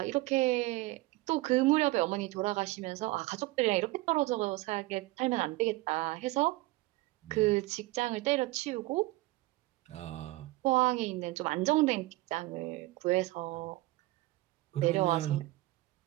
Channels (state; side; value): quieter; left; 19.8 dB